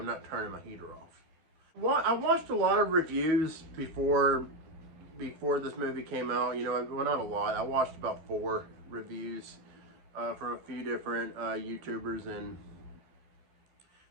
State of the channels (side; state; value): left; late; 12 ms